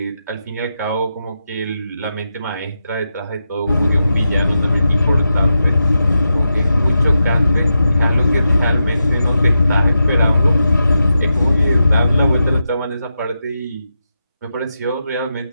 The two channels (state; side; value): inverted; both; correlation -0.88